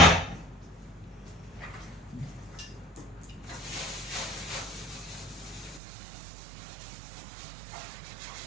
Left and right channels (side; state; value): left; drops out; at 5.8 s